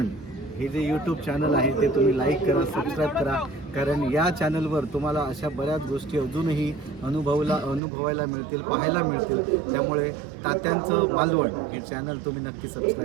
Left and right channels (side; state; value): left; drops out; at 7.8 s